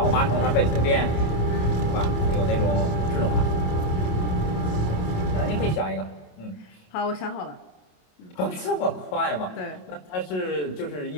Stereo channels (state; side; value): late; right; 27 ms